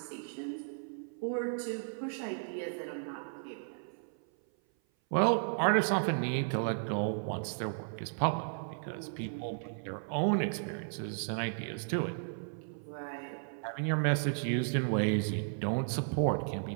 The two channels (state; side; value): silent; left; 55 dB below the other